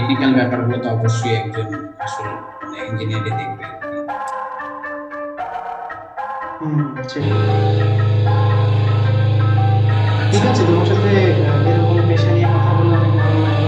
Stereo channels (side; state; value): both; identical; correlation 1.00